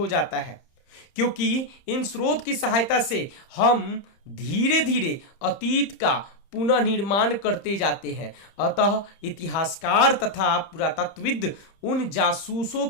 जाता है, क्योंकि इन स्रोत की सहायता से हम धीरे धीरे अतीत का पुनः निर्माण करते जाते हैं। अतः इतिहासकार तथा पुरातत्वविद उन जासूसों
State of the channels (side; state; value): right; late; 30 ms